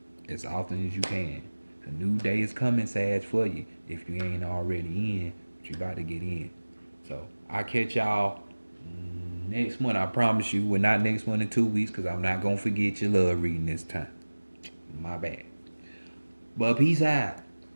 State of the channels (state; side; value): inverted; both; correlation -1.00